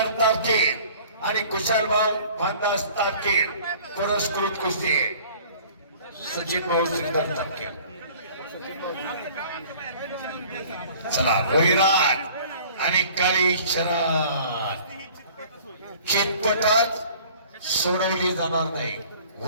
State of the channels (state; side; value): inverted; both; correlation -0.50